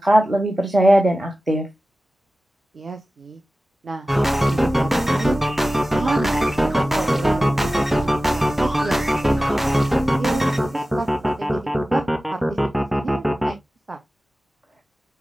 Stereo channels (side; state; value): both; normal; correlation 0.96